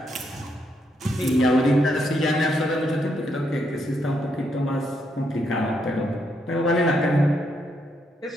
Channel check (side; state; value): both; normal; correlation 0.77